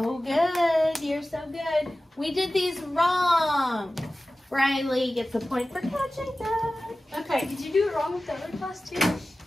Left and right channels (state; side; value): normal; both; correlation 0.96